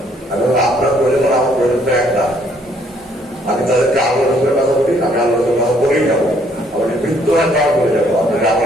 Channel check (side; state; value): both; normal; correlation 0.65